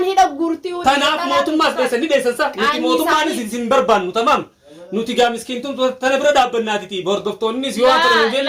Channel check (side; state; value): both; identical; correlation 1.00